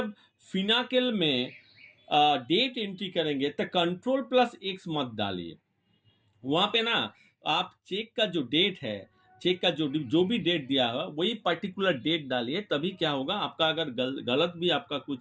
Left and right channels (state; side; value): identical; both; correlation 1.00